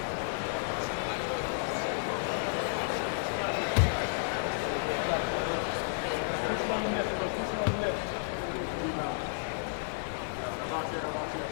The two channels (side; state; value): right; silent; digital silence